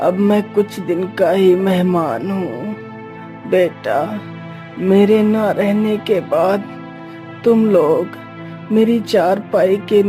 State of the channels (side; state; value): both; identical; correlation 1.00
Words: अब मैं कुछ दिन का ही मेहमान हूँ। बेटा, मेरे ना रहने के बाद तुम लोग मेरी चारपाई के